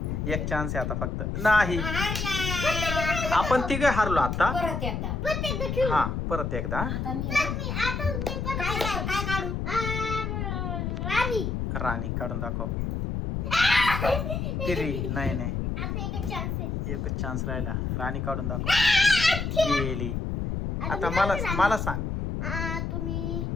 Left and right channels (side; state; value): left; noise; rumble, 2 dB below the sound